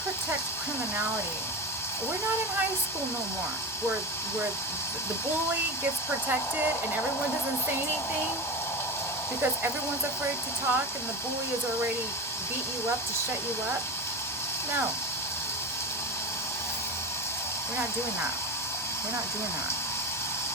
protect criminality, we're not in high school no more, where the bully gets protected and everyone doesn't say anything because everyone's afraid to talk and the bully has already beat you up to shut you up. No. We're not doing that. We're not doing that.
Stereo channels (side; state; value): both; normal; correlation 0.22